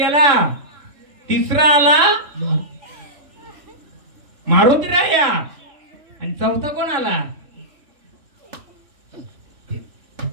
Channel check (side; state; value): left; late; 3.7 ms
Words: तिसरा आला मारुती राया, आणि चौथा कोण आला?